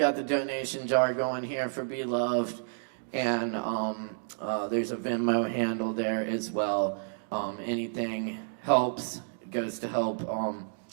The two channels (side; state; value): left; silent; digital silence